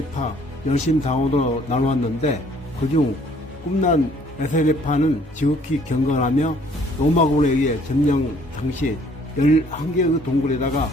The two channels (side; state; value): both; normal; correlation 0.60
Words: 열심당원으로 나누었는데 그중 꿈난 에세네파는 지극히 경건하며 로마군에 의해 점령 당시 11개의 동굴에다가